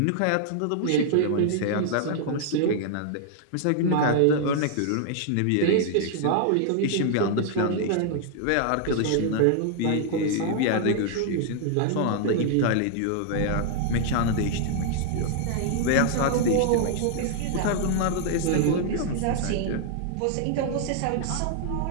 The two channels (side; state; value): both; different; correlation 0.00